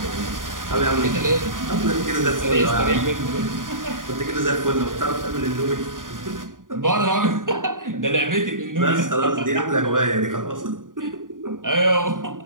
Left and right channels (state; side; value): late; left; 0.89 ms